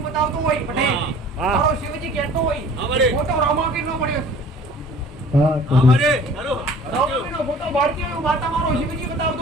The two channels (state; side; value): normal; both; correlation 0.48